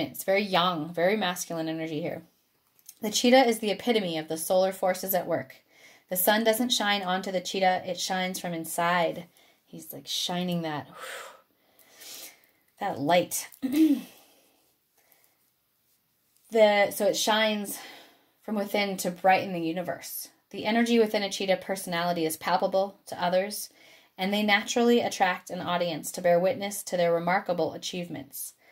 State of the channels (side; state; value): both; identical; correlation 1.00